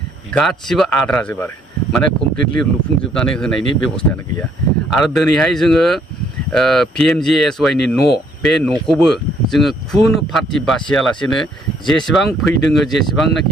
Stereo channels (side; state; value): both; normal; correlation 0.66